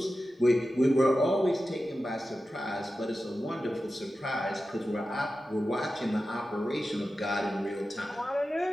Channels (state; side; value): normal; both; correlation 0.93